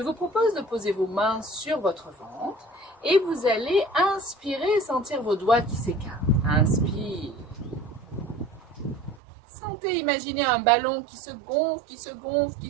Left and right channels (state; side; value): drops out; left; at 9.2 s